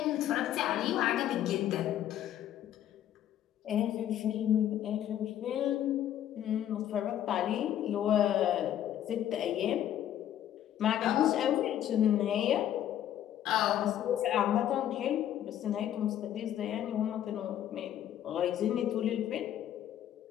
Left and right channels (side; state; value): right; quieter; 11.2 dB